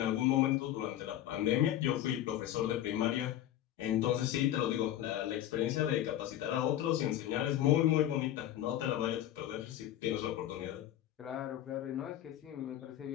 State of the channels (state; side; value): quieter; right; 12.4 dB